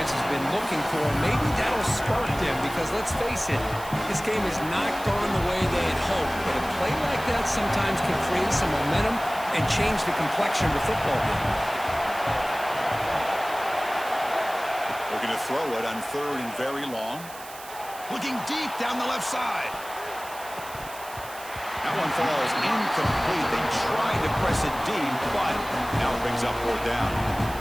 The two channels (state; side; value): noise; right; hiss, 16 dB below the sound